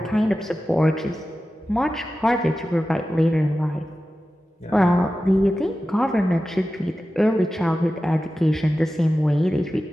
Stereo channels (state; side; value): normal; both; correlation 0.94